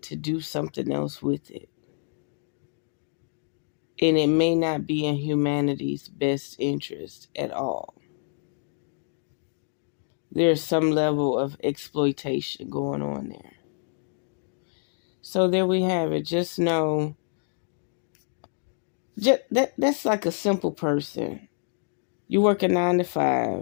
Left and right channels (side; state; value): right; silent; 60 dB below the other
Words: to do something else with it. And it may not be in humanity's best interest at all. There's some level of exploitation going on there. So there we have it. Just know, that's like a simple person. You work a 9 to